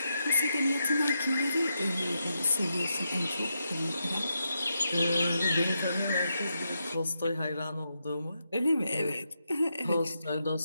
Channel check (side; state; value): both; inverted; correlation -0.84